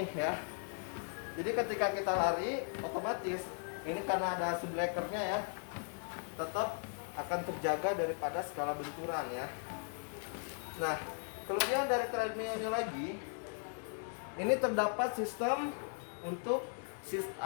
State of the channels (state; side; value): silent; right; 53 dB below the other